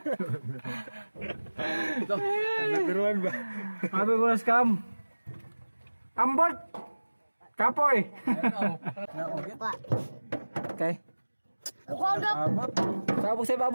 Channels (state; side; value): inverted; both; correlation -1.00